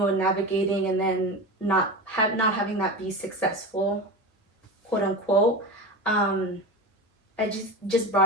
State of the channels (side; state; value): both; normal; correlation 0.25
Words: and navigating, and then not having that be successful, quote unquote. I just